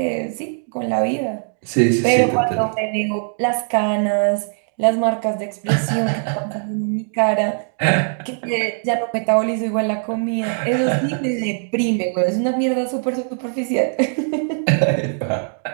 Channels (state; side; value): silent; left; 65 dB below the other